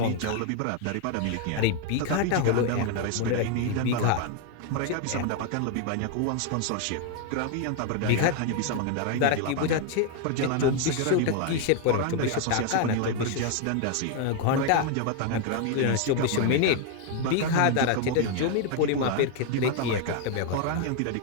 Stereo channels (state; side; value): different; both; correlation 0.01